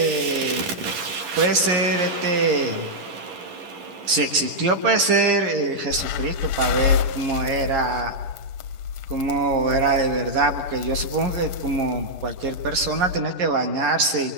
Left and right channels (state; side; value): late; left; 11 ms